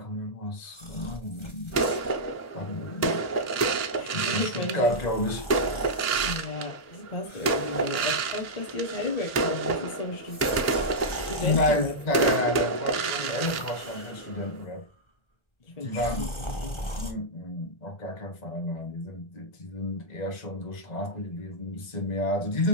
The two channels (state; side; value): late; right; 1.3 ms